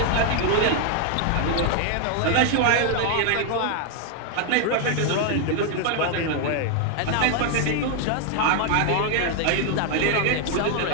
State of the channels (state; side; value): different; both; correlation 0.00